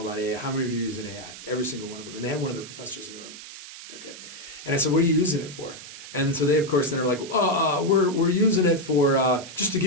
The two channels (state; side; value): noise; right; hiss, 14 dB below the sound